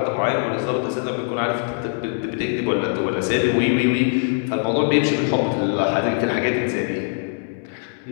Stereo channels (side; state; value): right; silent; 60 dB below the other